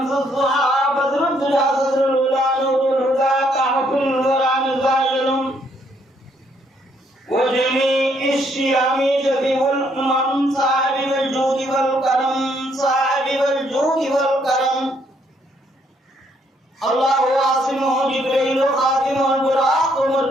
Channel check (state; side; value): normal; both; correlation 0.70